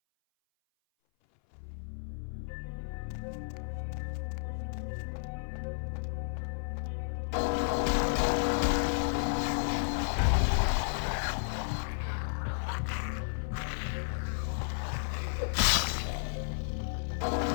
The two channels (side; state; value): right; silent; 56 dB below the other